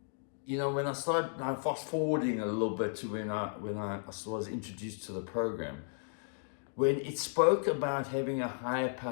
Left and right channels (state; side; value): silent; right; digital silence